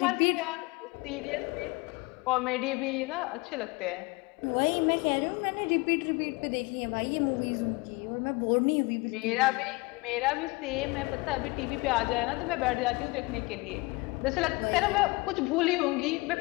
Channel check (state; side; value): quieter; right; 24.8 dB